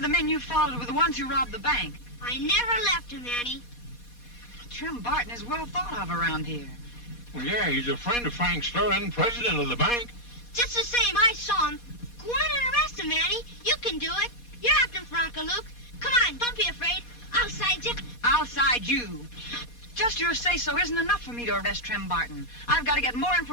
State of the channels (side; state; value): right; late; 4.2 ms